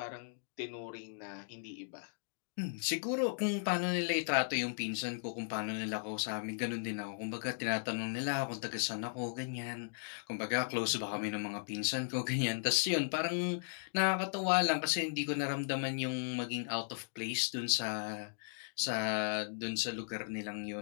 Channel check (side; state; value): right; silent; digital silence